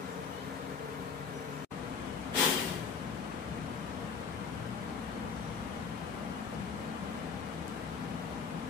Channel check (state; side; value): quieter; right; 5.8 dB